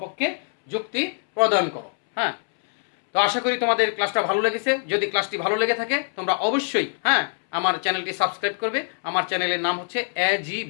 যুক্তি প্রদান করো। হ্যাঁ, তো আশা করি তোমাদের ক্লাসটা ভালো লেগেছে। যদি ক্লাসটি ভালো লেগে থাকে তোমরা অবশ্যই আমার চ্যানেলটি সাবস্ক্রাইব করবে। আমার চ্যানেলের নাম হচ্ছে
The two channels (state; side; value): silent; right; 63 dB below the other